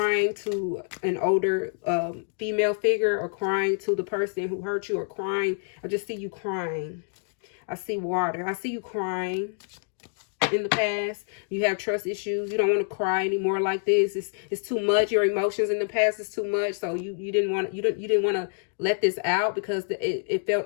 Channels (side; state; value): right; silent; digital silence